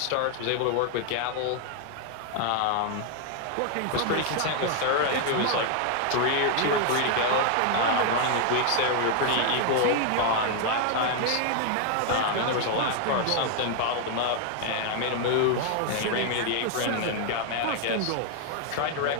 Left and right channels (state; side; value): different; both; correlation 0.00